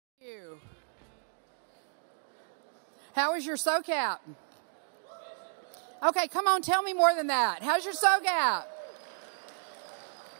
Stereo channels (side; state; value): left; silent; digital silence